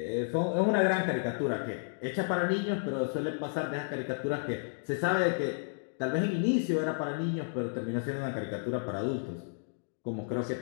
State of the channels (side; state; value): right; silent; digital silence